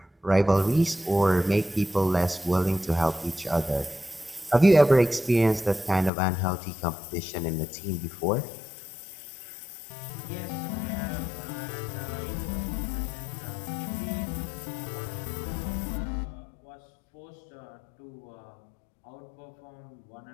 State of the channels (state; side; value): drops out; right; at 6.1 s